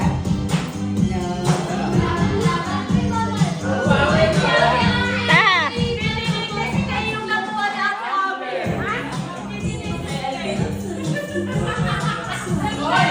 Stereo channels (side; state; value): both; identical; correlation 1.00